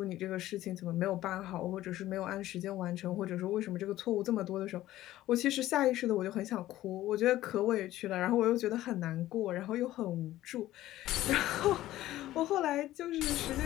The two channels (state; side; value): quieter; right; 14.8 dB